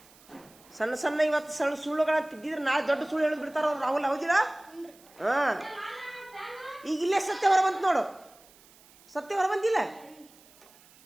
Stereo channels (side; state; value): right; noise; hiss, 26 dB below the sound